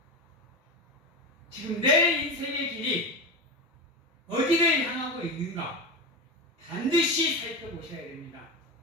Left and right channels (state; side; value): normal; both; correlation 0.20